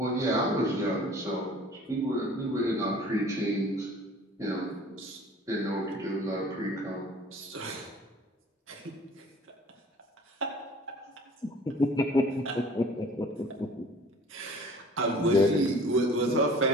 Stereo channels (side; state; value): both; normal; correlation 0.48